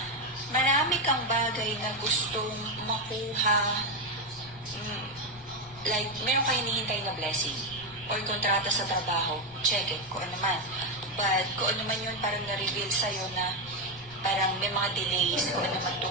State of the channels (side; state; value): left; noise; rumble, 22 dB below the sound